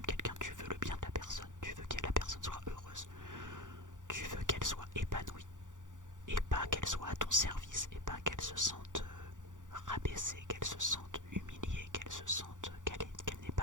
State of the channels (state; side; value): late; left; 0.87 ms